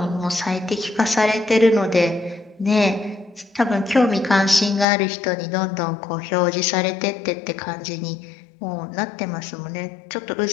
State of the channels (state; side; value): drops out; right; at 4.9 s